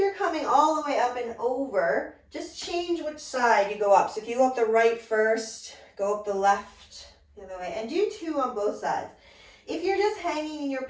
coming all the way up and over, just change which side you go up. So if you go up the right first, go up the left the other way, and do two on both sides. If you're just hanging in your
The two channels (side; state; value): both; identical; correlation 1.00